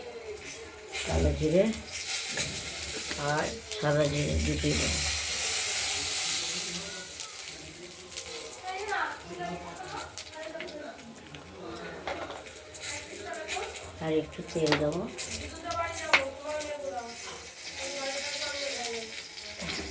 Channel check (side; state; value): both; identical; correlation 1.00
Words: কালো জিরে আর সাদা জিরে দুটোই দেবো। আর একটু তেল দেবো।